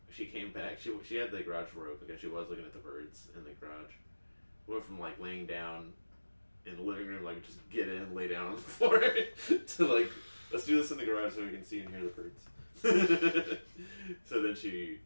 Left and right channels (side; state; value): both; inverted; correlation -1.00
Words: she came back, she had the garage door open because she was looking at the birds in the garage. Went from, like, laying down in the living room, like, just get in, lay down on the floor, to, like, let's do this in the garage so we can see and hear the birds. So then she